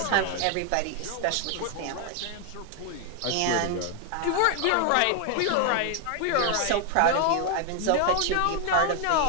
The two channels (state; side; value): different; both; correlation 0.00